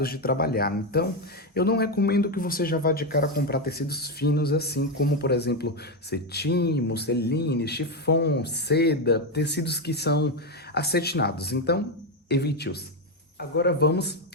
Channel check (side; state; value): both; normal; correlation 0.08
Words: de trabalhar. Então, eu não recomendo que você já vá de cara comprar tecidos finos assim, como por exemplo, cetim, musseline, chiffon, seda, tecidos que são acetinados. Então, evite-os. Agora vamos